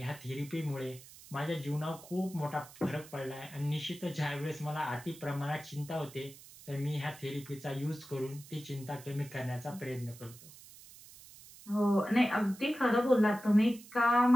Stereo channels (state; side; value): noise; right; hiss, 19 dB below the sound